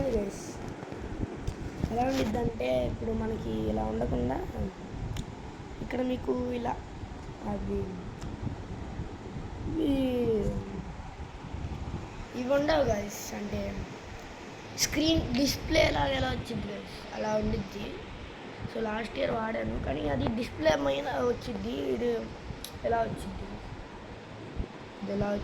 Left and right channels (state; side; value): identical; both; correlation 1.00